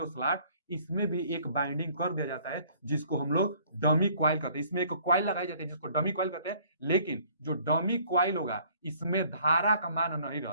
स्लॉट, इसमें भी एक बाइंडिंग कर दिया जाता है, जिसको हम लोग डमी क्वाइल कहते हैं। इसमें एक क्वाइल लगाई जाती है जिसको डमी क्वाइल कहते हैं। लेकिन जो डमी क्वाइल होगा, इसमें धारा का मान नहीं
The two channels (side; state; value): both; inverted; correlation -0.58